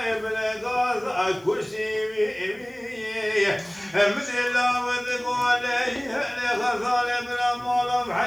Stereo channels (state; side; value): noise; left; hiss, 30 dB below the sound